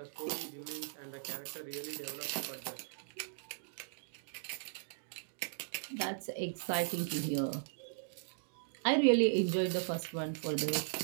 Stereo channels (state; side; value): silent; left; digital silence